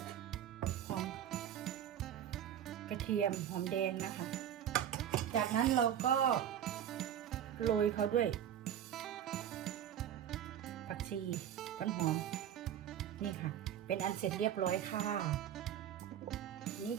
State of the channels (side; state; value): left; quieter; 10.1 dB